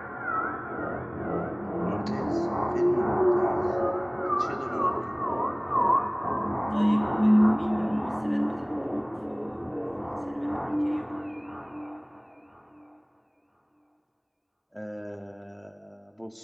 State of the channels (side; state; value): both; identical; correlation 1.00